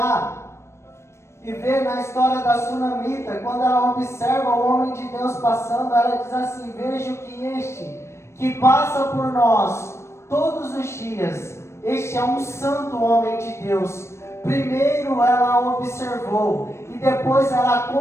e ver na história da Sunamita, quando ela observa o homem de Deus passando, ela diz assim: vejo que este que passa por nós todos os dias, este é um santo homem de Deus. Primeiro ela observou e depois ela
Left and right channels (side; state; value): right; late; 0.13 ms